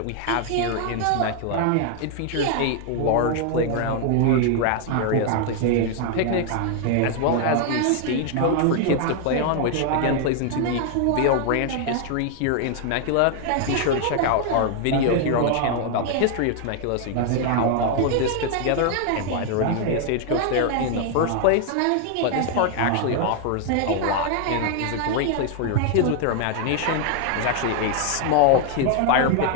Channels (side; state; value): both; different; correlation 0.00